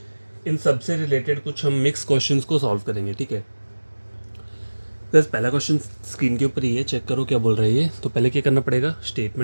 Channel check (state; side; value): inverted; both; correlation -1.00